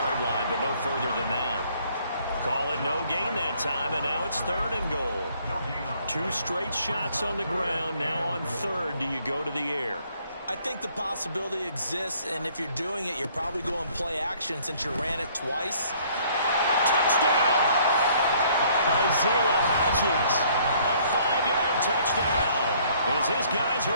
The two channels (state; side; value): inverted; both; correlation -0.61